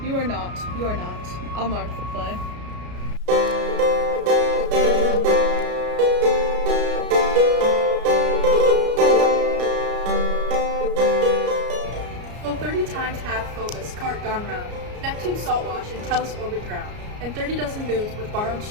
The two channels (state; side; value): late; left; 33 ms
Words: You are not. I'll mark the play. Full 30 times hath Phobos cart gone round, Neptune's salt wash and Tellus orbit drowned, and 30 dozen moons with borrowed